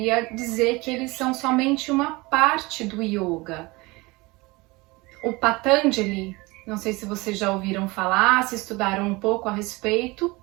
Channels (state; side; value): quieter; left; 23.6 dB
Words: dizer que eles são somente uma parte do yoga. O Patanjali, não sei se vocês já ouviram falar, se estudaram um pouco a respeito